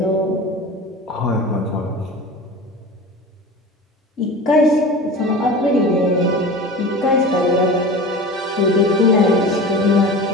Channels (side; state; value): both; normal; correlation 0.34